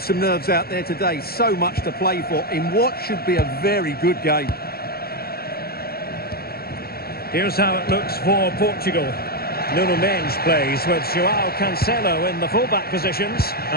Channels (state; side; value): late; right; 0.45 ms